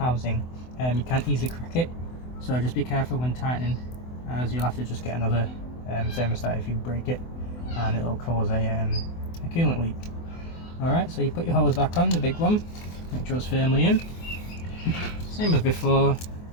You can't easily crack it, so just be careful when tightening, as you'll have to just get another thermostat if you break it, and it'll cause a coolant leak. Alright, so you put your hose back on, the big one, make sure it's firmly in, same as before.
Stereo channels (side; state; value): right; late; 24 ms